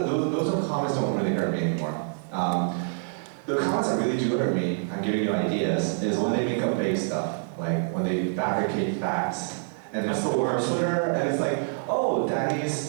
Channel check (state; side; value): silent; left; 60 dB below the other